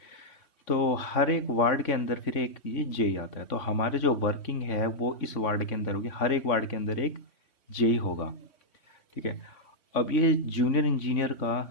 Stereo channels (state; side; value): late; right; 3.6 ms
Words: तो हर एक वार्ड के अंदर फिर एक ये जेई आता है। तो हमारे जो वर्किंग है वो इस वार्ड के अंदर होगी, हर एक वार्ड के अंदर एक जेई होगा। ठीक है। अब ये जूनियर इंजीनियर